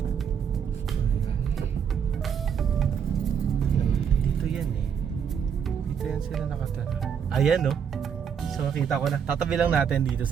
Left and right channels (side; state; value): left; quieter; 7.5 dB